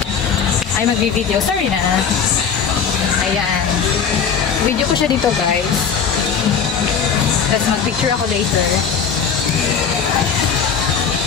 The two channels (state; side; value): quieter; right; 6.7 dB